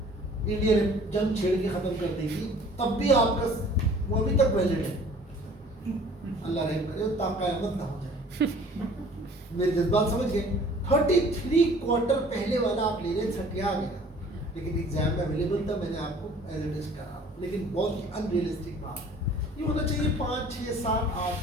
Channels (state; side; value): normal; both; correlation 0.51